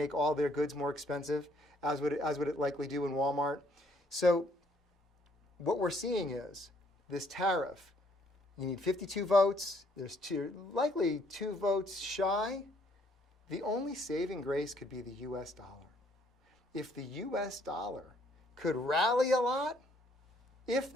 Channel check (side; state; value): both; normal; correlation 0.66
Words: all their goods more expensive, as would it likely do in Walmart. So what we're seeing is this tariff. You need 52 votes. There's likely 2 votes shy. The only saving grace could be the U.S. dollar. If the U.S. dollar could rally a lot, if